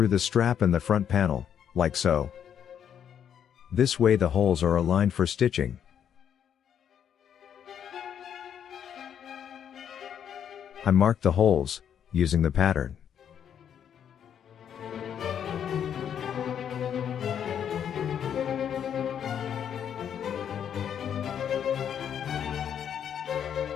the strap and the front panel, like so. This way the holes are aligned for stitching. I mark the holes using the pattern.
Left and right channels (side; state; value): right; quieter; 8.8 dB